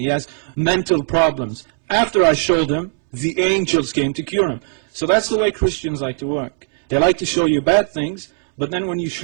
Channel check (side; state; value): left; silent; 67 dB below the other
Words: He has mental problems. After I showed him, the angels came to cure him. So that's the way Christians like to work. They like to show you bad things, but then when you